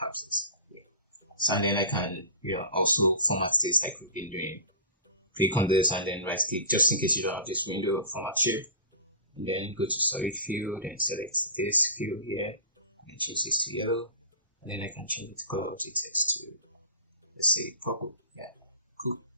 have this. So and then I can also format this like we've been doing. Click on this and then right click, just in case you don't have this window, format shape, and then go to solid fill, then select this fill here, and change this to yellow, and then I can change the color of the text to, let's say, purple. Yeah, cool.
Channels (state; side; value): inverted; both; correlation -0.33